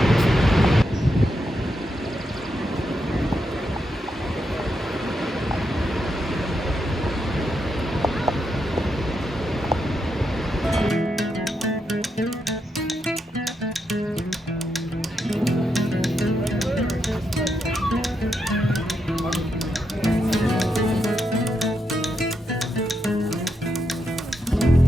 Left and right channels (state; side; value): normal; both; correlation 0.83